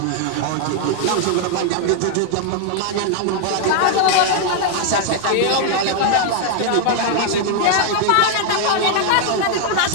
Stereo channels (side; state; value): both; different; correlation 0.00